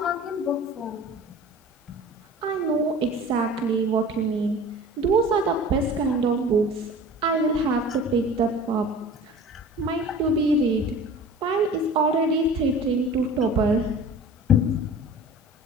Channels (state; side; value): normal; both; correlation 0.41